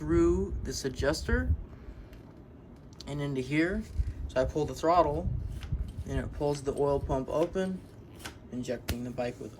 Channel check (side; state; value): both; identical; correlation 1.00